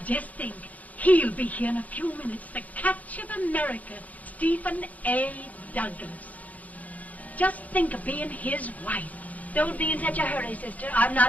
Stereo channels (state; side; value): late; right; 0.074 ms